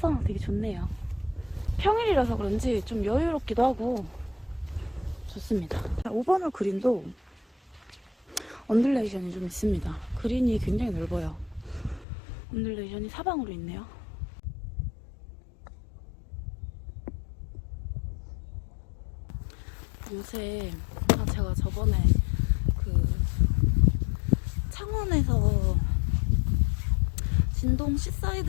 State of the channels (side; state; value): right; drops out; at 12.1 s